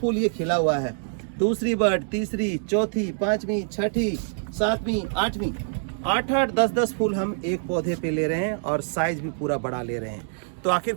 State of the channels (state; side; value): silent; left; 62 dB below the other